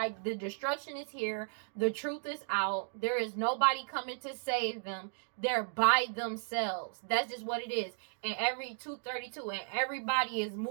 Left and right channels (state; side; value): silent; left; 55 dB below the other